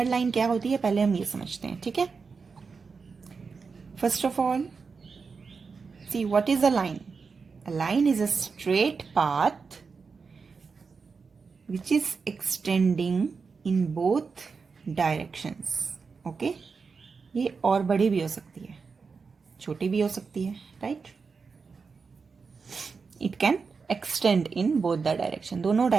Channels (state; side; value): quieter; left; 5.0 dB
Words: line क्या होती है पहले हम ये समझते हैं. ठीक है. First of all, see what is a line. A line is a straight path which is extending in both directions. Okay. ये और बड़ी भी हो सकती है, छोटी भी हो सकती है, right? It can extend in both the direction. दोनों